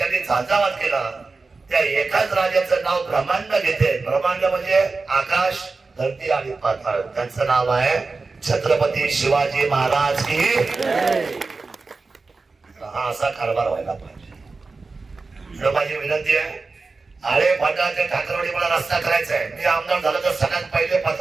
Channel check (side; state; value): left; quieter; 4.0 dB